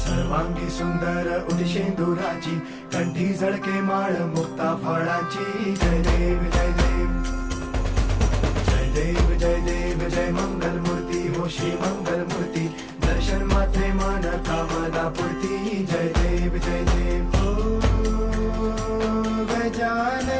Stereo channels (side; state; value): both; identical; correlation 1.00